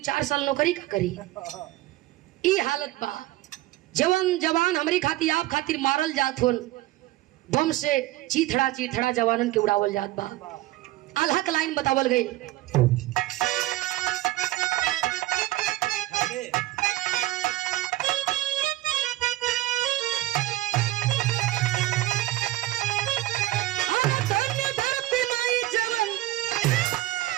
साल नौकरी का करी। ई हालत बा। जवान जवान हमारी खातिर आप खातिर मारल जात होन, बम से चीथड़ा चीथड़ा जवानन के उड़ावल जात बा। आल्हा के लाइन बतावल गई।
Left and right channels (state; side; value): quieter; left; 16.6 dB